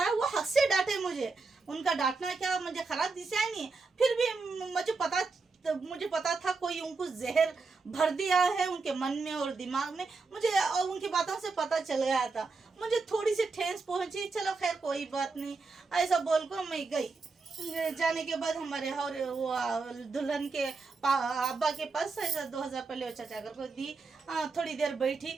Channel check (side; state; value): left; quieter; 4.2 dB